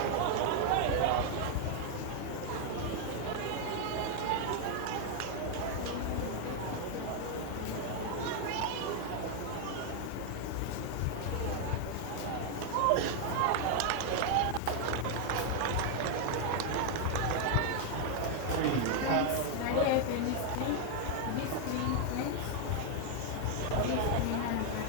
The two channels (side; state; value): both; different; correlation 0.00